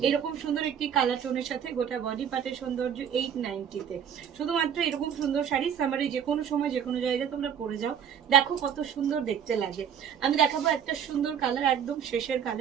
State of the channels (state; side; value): quieter; left; 8.4 dB